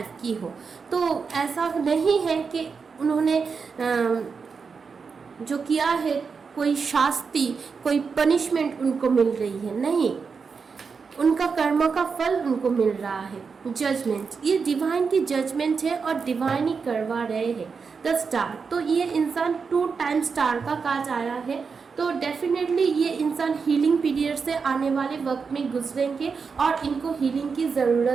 की हो। तो ऐसा नहीं है कि उन्होंने जो किया है कोई शास्ति, कोई पनिशमेंट उनको मिल रही है, नहीं, उनका कर्म का फल उनको मिल रहा है। जजमेंट, ये डिवाइन की जजमेंट है और डिवाइन ही करवा रहे हैं। द स्टार, तो ये इंसान 2 टाइम स्टार का काज आया है, तो डेफिनेटली ये इंसान हीलिंग पीरियड से आने वाले वक्त में गुजरेंगे और इनको हीलिंग की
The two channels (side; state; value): left; quieter; 5.4 dB